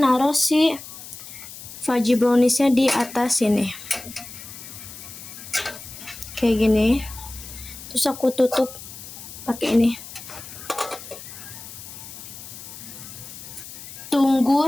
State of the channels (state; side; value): noise; left; hiss, 14 dB below the sound